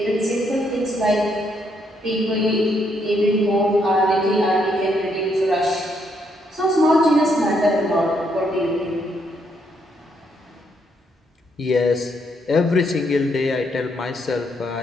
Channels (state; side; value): normal; both; correlation 0.75